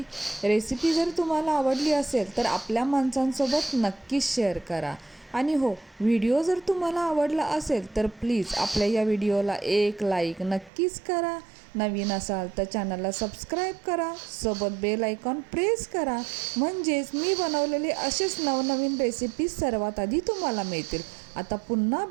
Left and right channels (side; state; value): left; drops out; at 10.7 s